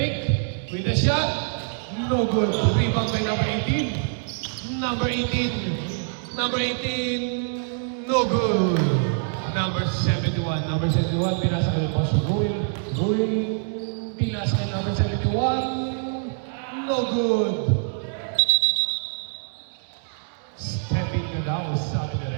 with a shot. No good. Rebound by number 18. Number 18, no good. Number 71, pinasa kay Boss Rui. Pinasa kay number 71, no good. Step in ka daw, sabi ka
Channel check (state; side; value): silent; left; 62 dB below the other